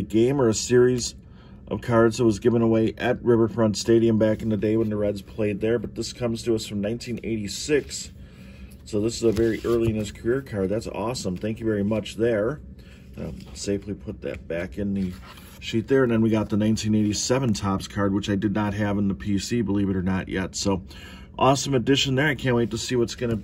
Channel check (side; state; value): both; identical; correlation 1.00